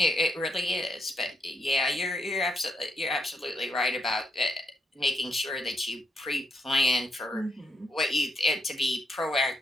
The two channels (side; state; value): both; normal; correlation 0.80